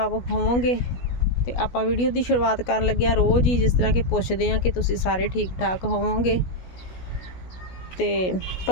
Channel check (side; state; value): right; late; 16 ms